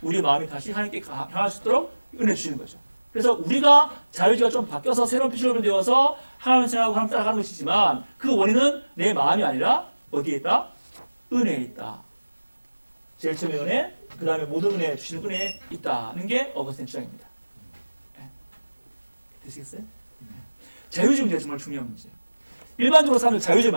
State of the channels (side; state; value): both; inverted; correlation -1.00